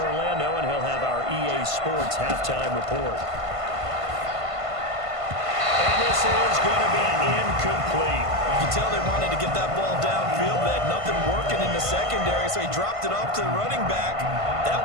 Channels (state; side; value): late; left; 1.5 ms